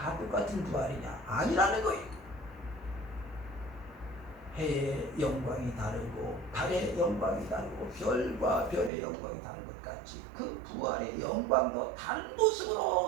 똑같은 부활이냐? 아니라는 거예요. 해의 영광이 다르고 달의 영광이 다르고 별과 별의 영광이 다른 것 같이 그 부활의 영광도 다른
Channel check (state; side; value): drops out; left; at 8.9 s